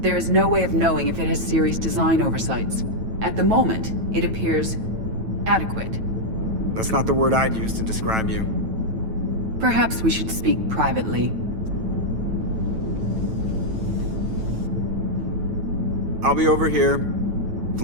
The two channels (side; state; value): left; late; 9.1 ms